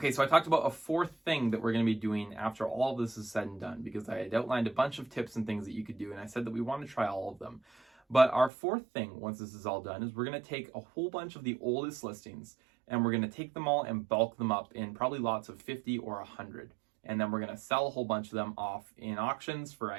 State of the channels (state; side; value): drops out; left; at 8.5 s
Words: so I talked about a 4th thing that we're going to be doing after all of this is said and done, because I had outlined a bunch of tips and things that you could do, and I said that we want to try all of them. But our 4th thing, once this is all done, is we're going to take a whole bunch of the oldest listings and we're going to take them all and bulk them up in probably lots of 50 or 100. And then we're going to sell a whole bunch of them off in auctions for